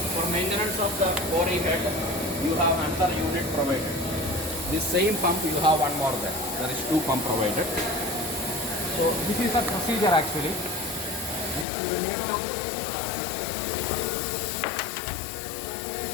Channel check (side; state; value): right; drops out; at 11.7 s